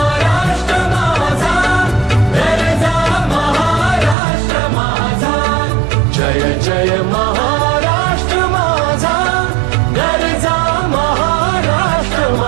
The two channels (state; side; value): drops out; left; at 4.2 s